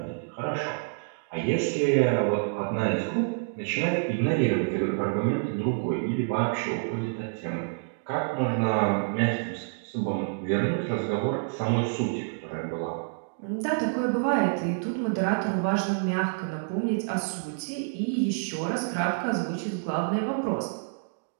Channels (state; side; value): silent; left; digital silence